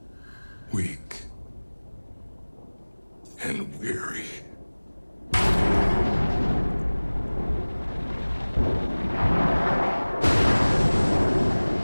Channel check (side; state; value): both; inverted; correlation -1.00